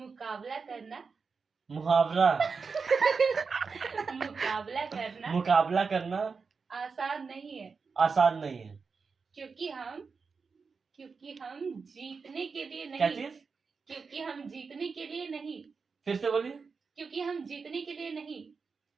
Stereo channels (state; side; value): quieter; left; 5.0 dB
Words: करना मुकाबला करना आसान नहीं है। आसान नहीं है। क्योंकि हम जीतने के लिए क्या नहीं। चीज? क्योंकि हम जीतने के लिए नहीं। फिर से बोलिए। क्योंकि हम जीतने के लिए नहीं।